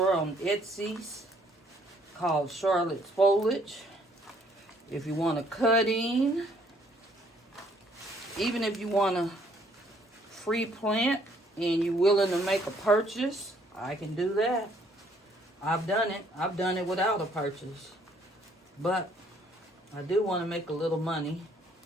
on Etsy called Charlotte's Foliage. If you want a cutting, even if you want a free plant and you're willing to make a purchase, I can do that. I've done it. I've done it without a purchase. But I do want to make a little money.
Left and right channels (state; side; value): normal; both; correlation 0.64